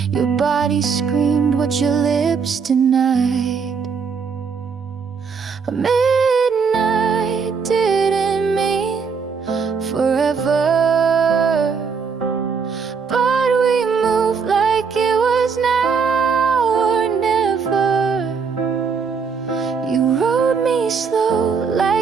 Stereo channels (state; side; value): quieter; left; 5.7 dB